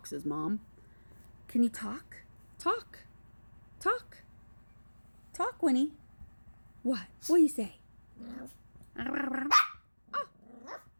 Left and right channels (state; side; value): inverted; both; correlation -1.00